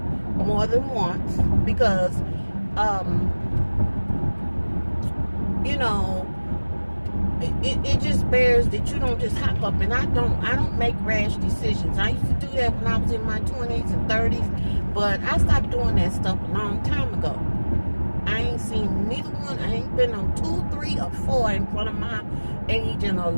more than once, because it just bears that you don't just hop up, and I don't make rash decisions. I used to do that when I was in my 20s and 30s, but I stopped doing that stuff a long time ago. I ain't seen neither one. I ain't been on 2, 3, or 4 in front of my age in a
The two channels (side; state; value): both; inverted; correlation -1.00